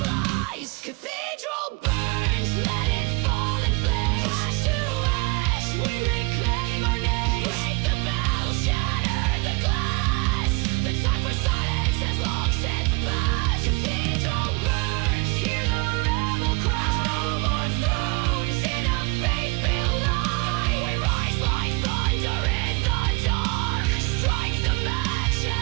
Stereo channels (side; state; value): left; quieter; 28.3 dB